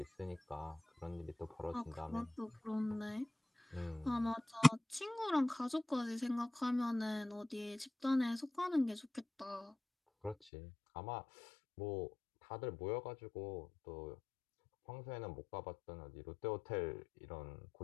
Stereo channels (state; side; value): drops out; right; at 10.4 s